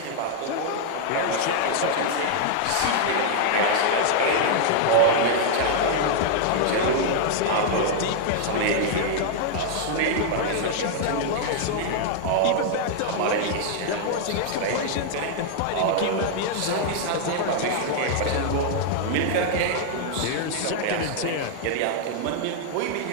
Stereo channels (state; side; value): different; both; correlation -0.01